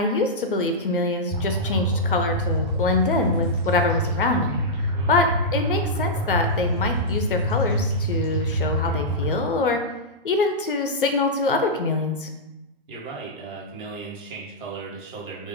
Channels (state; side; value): normal; both; correlation -0.09